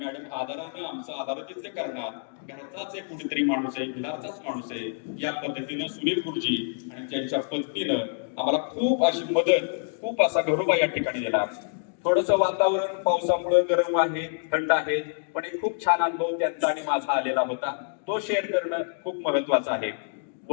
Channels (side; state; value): right; silent; digital silence